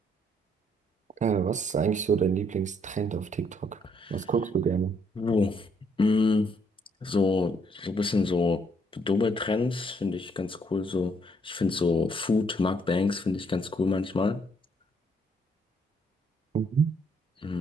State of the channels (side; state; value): both; normal; correlation 0.69